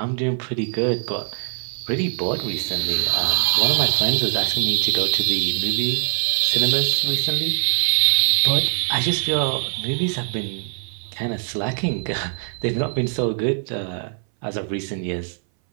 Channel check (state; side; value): silent; left; 60 dB below the other